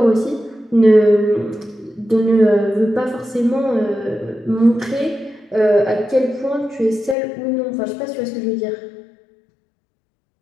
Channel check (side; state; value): right; drops out; at 7.2 s